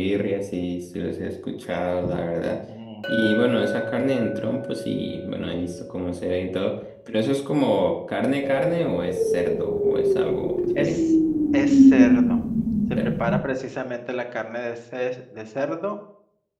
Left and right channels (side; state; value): both; identical; correlation 1.00